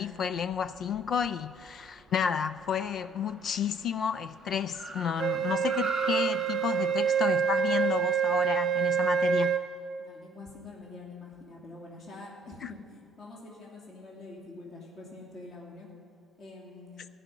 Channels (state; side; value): normal; both; correlation 0.60